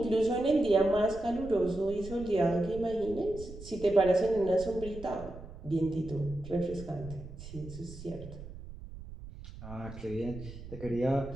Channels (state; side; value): noise; right; rumble, 13 dB below the sound